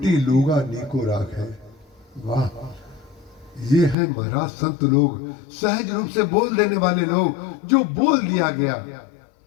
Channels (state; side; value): drops out; right; at 4.0 s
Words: लूगा नीको राख है। वाह, ये है महाराज संत लोग, सहज रूप से बोल देने वाले लोग। जो बोल दिया गया,